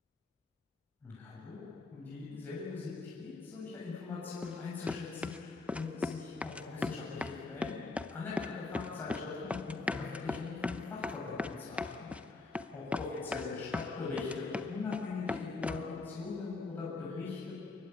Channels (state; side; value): quieter; right; 3.6 dB